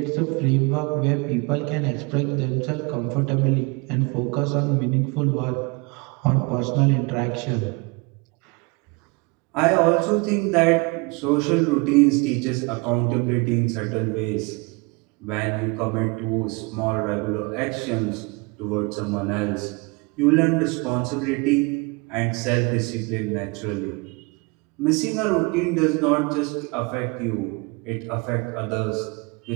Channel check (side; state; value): left; quieter; 28.2 dB